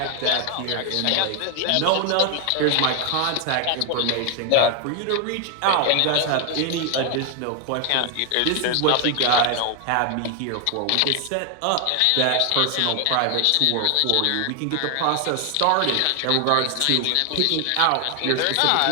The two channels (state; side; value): different; both; correlation 0.00